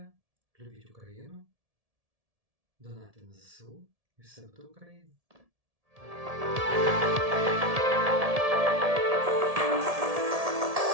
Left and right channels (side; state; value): left; late; 1.7 ms